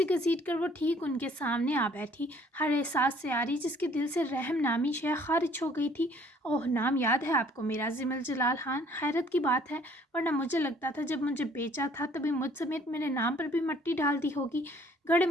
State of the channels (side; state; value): both; normal; correlation 0.58